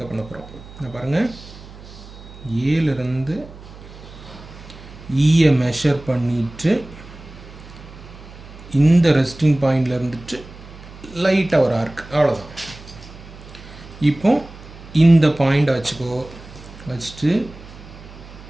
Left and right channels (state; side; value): noise; right; hum, 17 dB below the sound